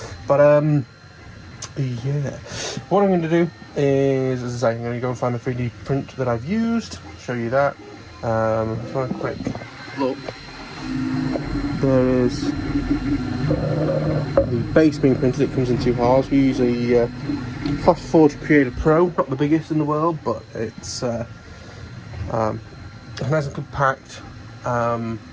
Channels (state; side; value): identical; both; correlation 1.00